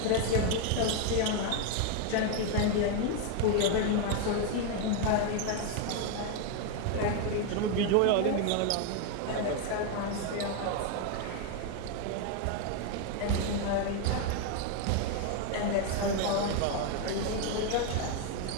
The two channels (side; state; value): both; different; correlation 0.01